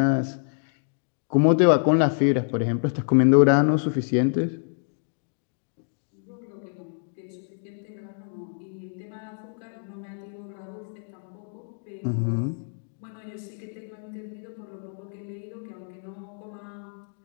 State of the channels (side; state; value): right; silent; 60 dB below the other